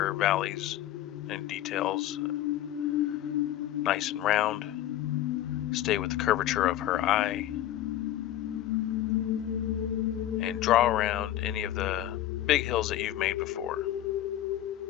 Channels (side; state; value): right; quieter; 12.9 dB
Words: valleys and details nice and round. Stay with the curvature of her eye, and draw around any of the big hills that you've made before.